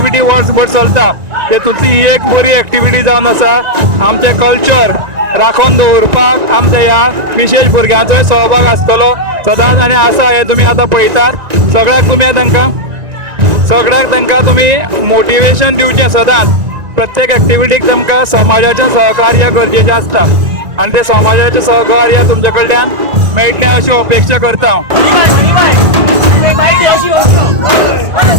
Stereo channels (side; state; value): left; late; 1.9 ms